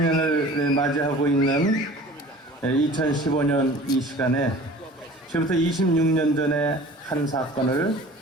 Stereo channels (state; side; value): normal; both; correlation 0.44